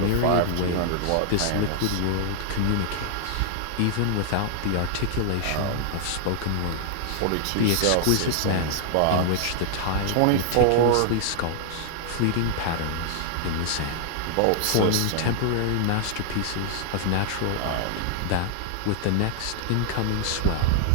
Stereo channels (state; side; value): different; both; correlation 0.00